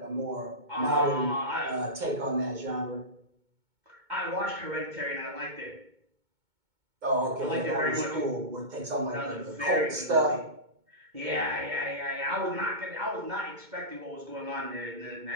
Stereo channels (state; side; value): late; left; 2.2 ms